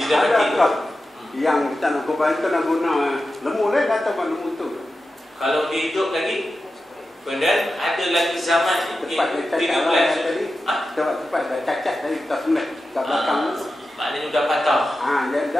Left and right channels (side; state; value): both; normal; correlation 0.92